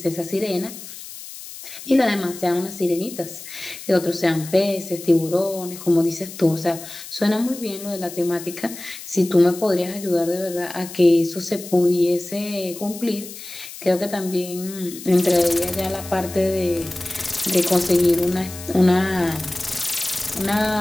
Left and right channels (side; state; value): left; noise; hiss, 13 dB below the sound